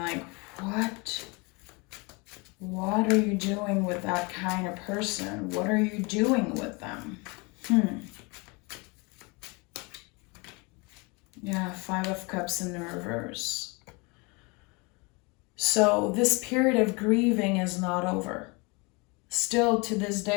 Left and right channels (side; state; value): right; quieter; 28.6 dB